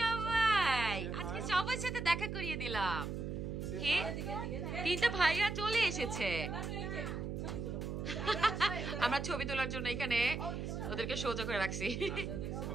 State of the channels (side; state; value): right; noise; hum, 4 dB below the sound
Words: আজকে সবার সাথে দেখা করিয়ে দিলাম। কে? তিনটা ভাইয়া চলে এসেছে। আমরা ছবি তোলার জন্য এখানে ওদেরকে সোজা করে রাখছি।